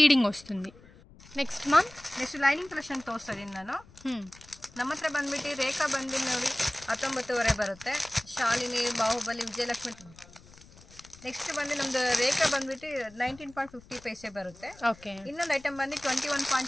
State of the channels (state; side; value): noise; left; rumble, 23 dB below the sound